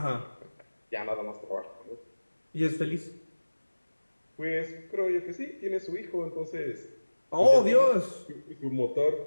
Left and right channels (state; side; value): inverted; both; correlation -1.00